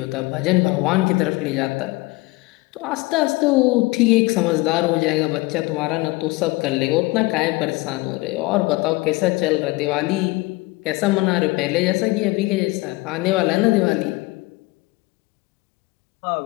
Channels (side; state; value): right; quieter; 22.5 dB